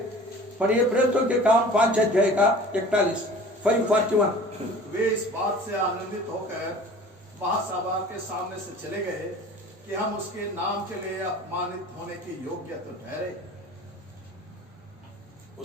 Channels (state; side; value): normal; both; correlation 0.44